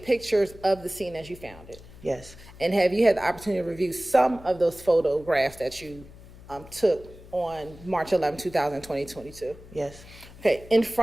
pictures of the scene as you found it? Yes, And have you had the opportunity to review some of those photographs that you took on March 11, 2022? yes, Okay, in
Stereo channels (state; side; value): noise; left; hum, 19 dB below the sound